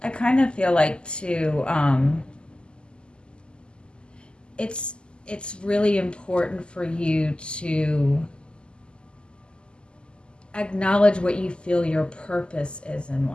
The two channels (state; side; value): late; right; 0.049 ms